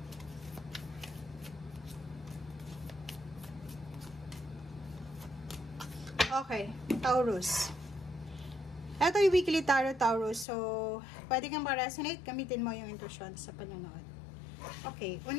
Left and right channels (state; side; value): drops out; right; at 10.5 s